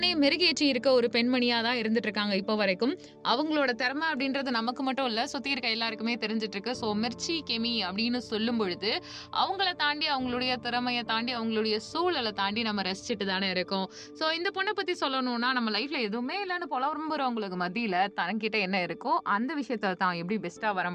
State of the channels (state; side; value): identical; both; correlation 1.00